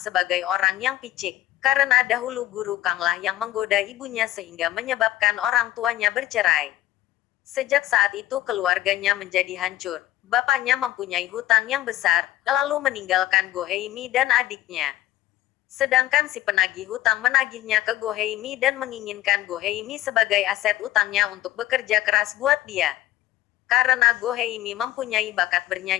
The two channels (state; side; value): quieter; right; 14.5 dB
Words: orang yang picik, karena dahulu Guru Kang lah yang menggoda ibunya sehingga menyebabkan orang tuanya bercerai. Sejak saat itu keluarganya menjadi hancur. Bapaknya mempunyai hutang yang besar, lalu meninggalkan Go Heimi dan adiknya. Sedangkan si penagih hutang menagihnya ke Go Heimi dan menginginkan Go Heimi sebagai aset utangnya untuk bekerja keras buat dia. Karena Go Heimi mempunyai bakat